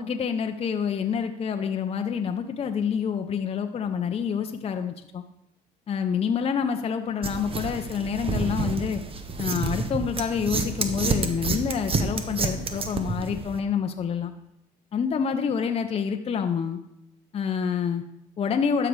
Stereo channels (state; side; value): quieter; right; 4.0 dB